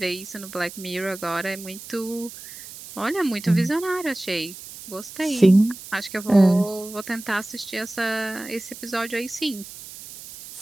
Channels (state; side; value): noise; right; hiss, 14 dB below the sound